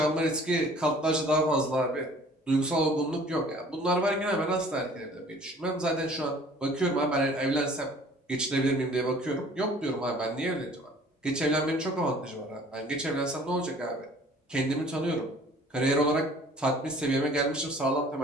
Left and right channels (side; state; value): both; normal; correlation 0.52